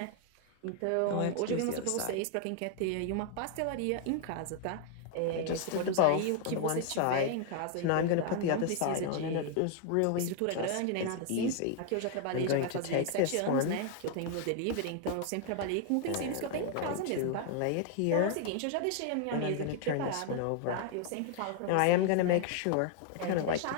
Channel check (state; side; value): different; both; correlation 0.00